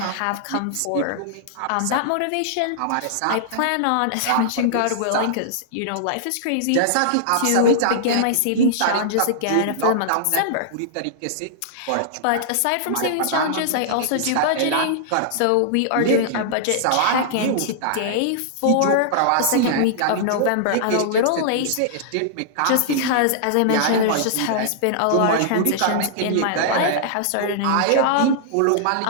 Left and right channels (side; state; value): both; different; correlation -0.02